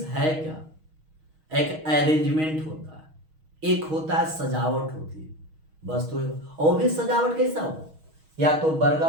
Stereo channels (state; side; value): late; left; 6.3 ms